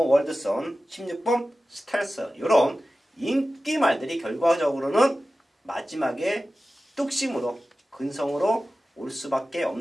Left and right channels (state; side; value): normal; both; correlation 0.95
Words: 월드선, 16번 스텔스. 이런 인기 말들이 결과적으로는 마지막에 뚝심으로 근성으로 올 수밖에